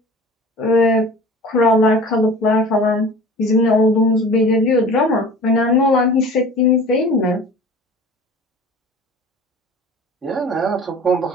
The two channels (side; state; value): both; normal; correlation 0.42